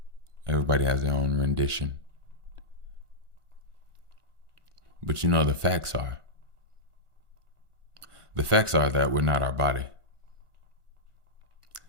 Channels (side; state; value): left; late; 1.4 ms